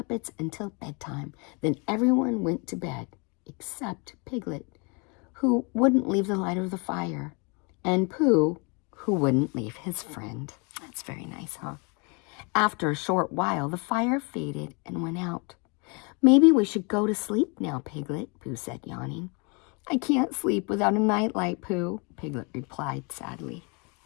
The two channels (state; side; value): quieter; right; 31.9 dB